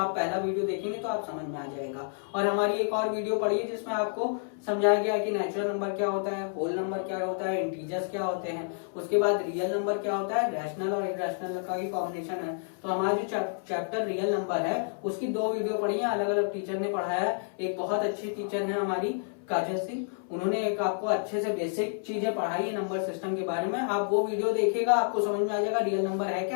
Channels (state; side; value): silent; right; 58 dB below the other